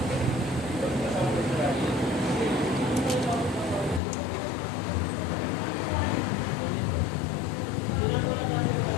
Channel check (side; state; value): right; drops out; at 4.0 s